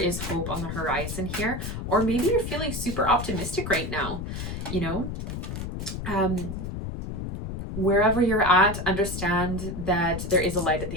hope on the horizon here. Or maybe you're feeling super optimistic right now. Wherever you're at, understand that there is a light at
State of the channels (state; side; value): noise; left; rumble, 6 dB below the sound